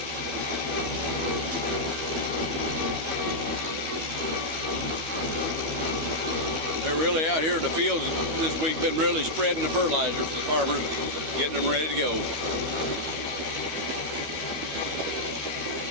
They're really out here in the fields this week, been really spreading the fertilizer for the farmers, getting them ready to go.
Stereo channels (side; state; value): left; late; 12 ms